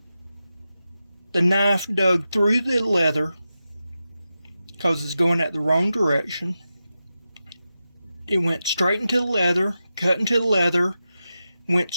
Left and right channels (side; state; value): both; inverted; correlation -0.91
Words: the knife dug through the leather because it's going at the wrong direction. It went straight into the leather, cut into the leather, went